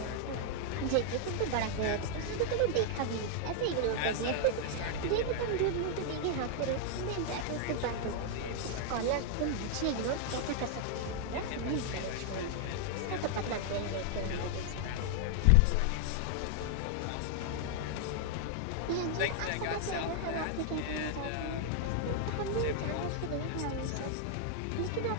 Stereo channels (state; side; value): different; both; correlation 0.00